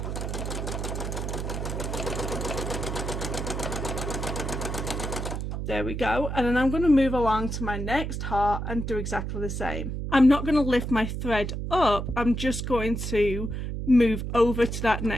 There we go. And then I'm going to move along to my next heart and do exactly the same. I'm not going to lift my thread up. I'm just going to move over to that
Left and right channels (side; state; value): right; noise; hum, 4 dB below the sound